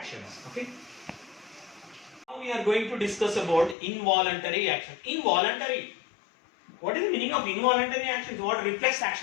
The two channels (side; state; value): right; drops out; at 3.8 s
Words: Okay, now we are going to discuss about involuntary action. Involuntary, what is the meaning of involuntary actions? What? Reflex